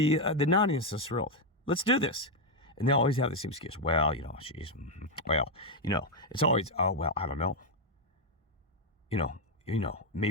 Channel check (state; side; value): normal; both; correlation 0.03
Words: naughtiness of this world. Let's do this. And they always have the same excuse. Well, you know, it's always, oh, well, I don't know. You know,